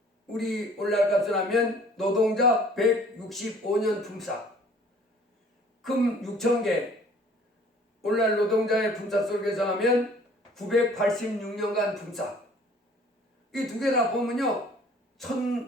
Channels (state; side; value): normal; both; correlation 0.54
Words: 우리 오늘날 값을 하면 노동자 165년 품삯. 금 6,000개. 오늘날 노동자의 품삯을 계산하면 986년간 품삯. 이 두 개 다 보면요.